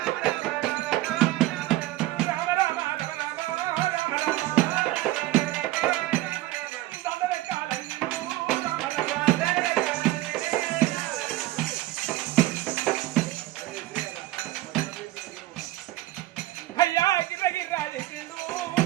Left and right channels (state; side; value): quieter; left; 16.7 dB